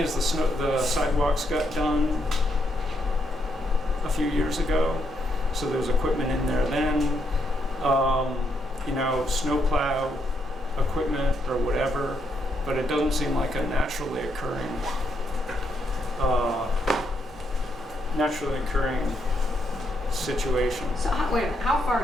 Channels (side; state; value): both; normal; correlation 0.77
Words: the sidewalks got done a few years ago, so there was equipment in there then. Snowplow equipment or whatever, but it doesn't seem like a naturally occurring situation. So wait a minute, how